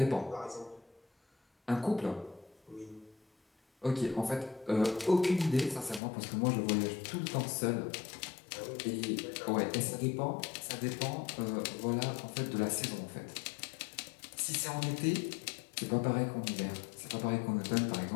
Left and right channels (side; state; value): right; drops out; at 6.0 s